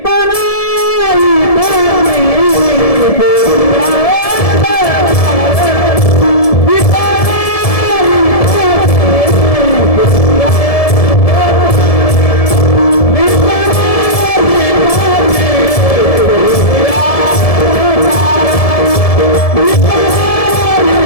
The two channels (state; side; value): late; right; 1.7 ms